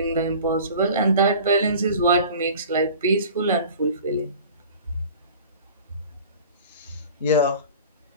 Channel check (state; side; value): inverted; both; correlation -0.42